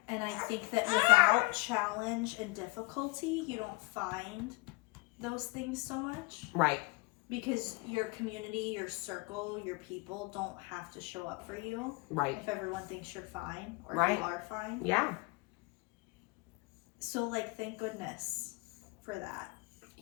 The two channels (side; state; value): right; quieter; 25.9 dB